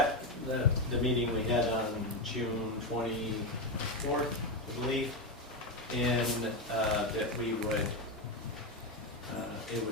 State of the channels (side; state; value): both; normal; correlation 0.10